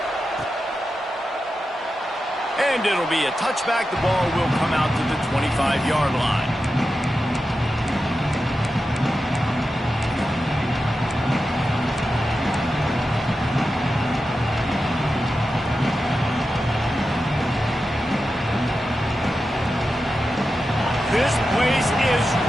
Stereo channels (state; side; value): normal; both; correlation 0.91